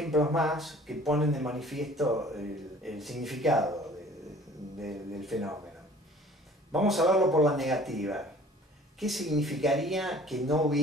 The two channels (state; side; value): normal; both; correlation 0.50